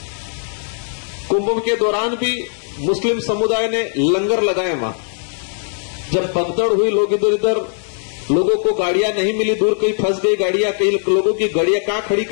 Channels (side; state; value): right; silent; 63 dB below the other